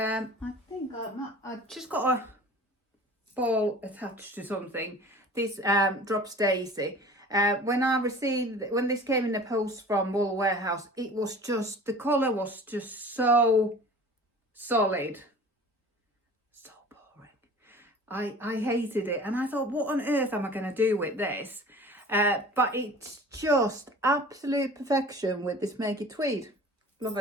think I just got a ball attached to something. This Drops Daisy. When this came in the post from Wool Warehouse, it was just, the colour was just so solid, so boring. I hated it, and I thought, what on earth am I going to do with this? But it's just absolute perfection with this Make It Tweed. Love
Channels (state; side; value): normal; both; correlation 0.43